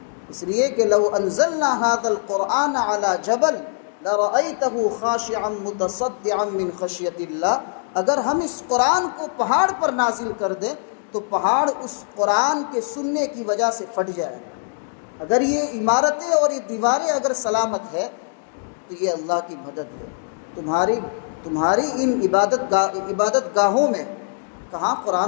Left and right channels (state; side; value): silent; right; digital silence